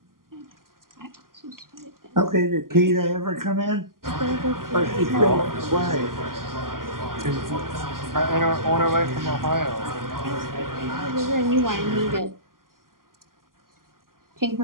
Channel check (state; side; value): late; left; 0.91 ms